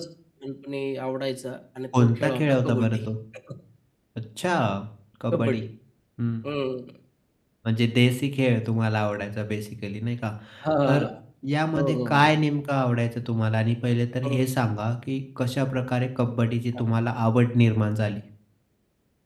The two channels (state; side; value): identical; both; correlation 1.00